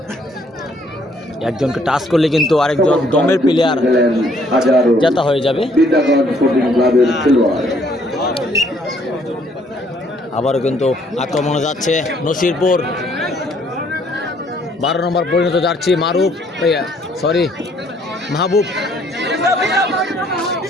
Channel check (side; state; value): both; normal; correlation 0.65